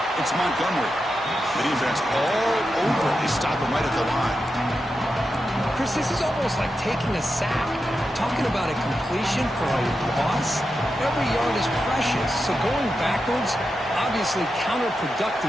It's Montgomery. The defense all over. They stop him right at the line. Chris, this is almost like taking a sack. Talking about a completion for a loss, every yard is precious. So going backwards, obviously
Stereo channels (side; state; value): both; normal; correlation 0.89